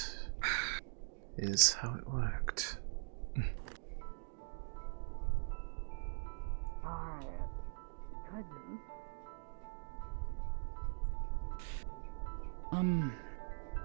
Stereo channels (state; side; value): silent; left; digital silence